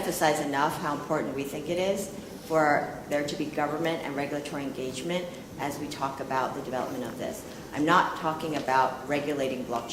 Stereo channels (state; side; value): identical; both; correlation 1.00